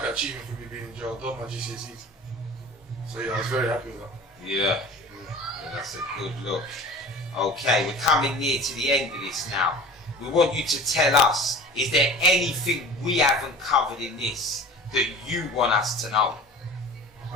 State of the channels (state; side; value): normal; both; correlation 0.39